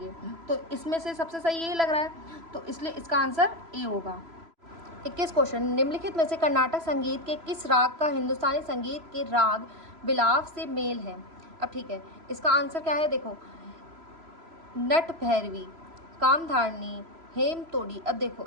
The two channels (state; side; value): late; left; 3.0 ms